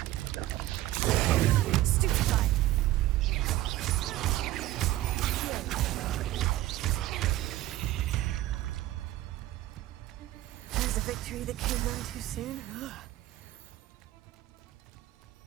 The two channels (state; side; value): quieter; left; 15.4 dB